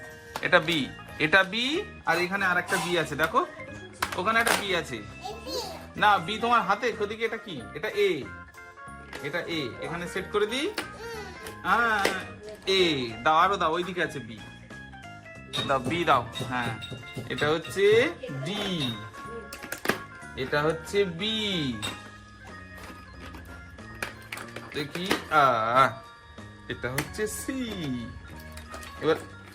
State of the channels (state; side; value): identical; both; correlation 1.00